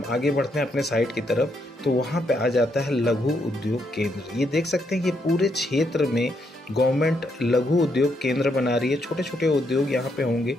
आगे बढ़ते हैं अपने साइट की तरफ तो वहाँ पे आ जाता है लघु उद्योग केंद्र। ये देख सकते हैं कि पूरे क्षेत्र में गवर्नमेंट लघु उद्योग केंद्र बना रही है। छोटे छोटे उद्योग यहाँ पे होंगे,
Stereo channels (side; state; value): both; normal; correlation 0.77